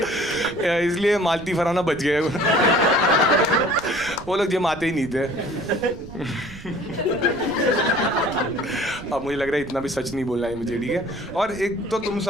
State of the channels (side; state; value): right; noise; rumble, 16 dB below the sound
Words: इसलिए मालती फराना बच गए। वो लोग जिम आते ही नहीं थे। अब मुझे लग रहा है इतना भी सच नहीं बोलना है मुझे, ठीक है। और एक तो तुम